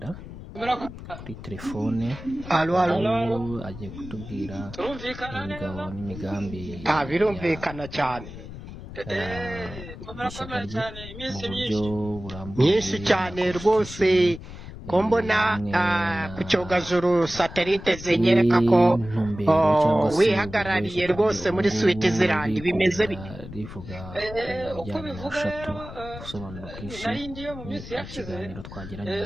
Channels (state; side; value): noise; left; rumble, 13 dB below the sound